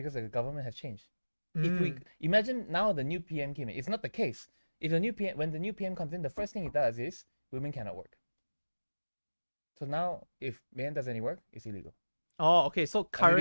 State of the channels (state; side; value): inverted; both; correlation -1.00